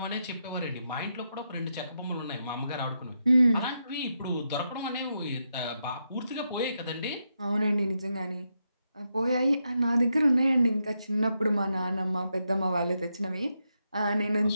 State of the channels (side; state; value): both; inverted; correlation -0.84